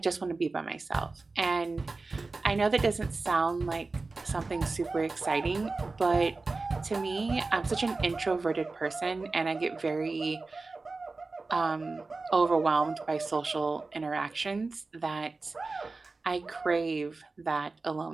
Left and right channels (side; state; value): left; quieter; 3.7 dB